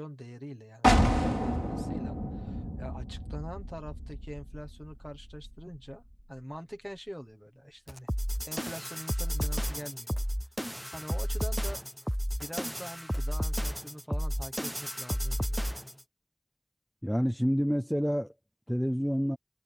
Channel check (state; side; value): identical; both; correlation 1.00